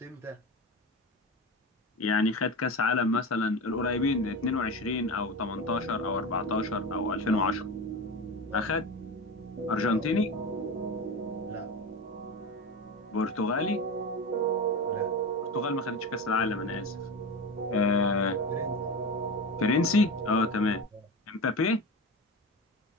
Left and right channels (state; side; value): normal; both; correlation 0.25